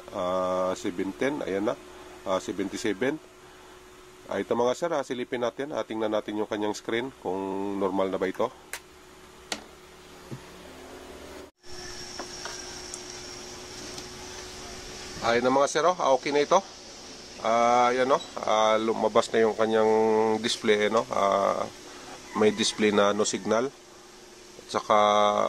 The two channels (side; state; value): both; identical; correlation 1.00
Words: ayan na, 77. Ito mga sir, silipin natin, tingnan natin yung kanyang screen kung normal na ba ito. Ayan na mga sir, okay na ito. Ayan o, lumabas na yung kanyang display, may display na no signal. At saka